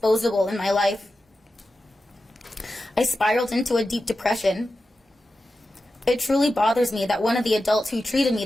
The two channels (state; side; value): normal; both; correlation 0.92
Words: in my life. I spiraled into a deep depression. It truly bothers me that one of the adults who treated me